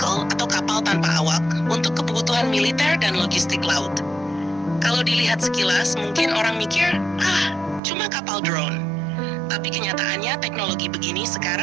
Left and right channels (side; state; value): left; drops out; at 7.8 s